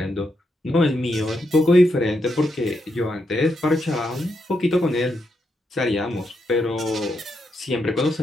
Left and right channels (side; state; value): both; normal; correlation 0.82